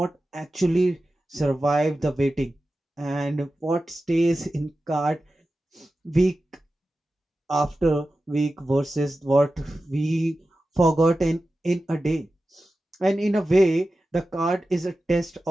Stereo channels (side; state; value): both; normal; correlation 0.94